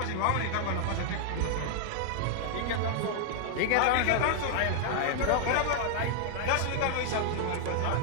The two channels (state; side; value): different; both; correlation 0.00